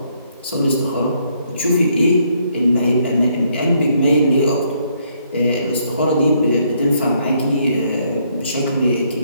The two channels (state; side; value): inverted; both; correlation -0.71